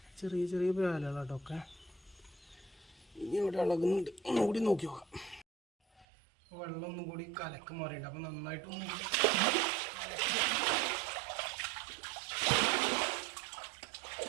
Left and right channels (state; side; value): drops out; left; at 6.1 s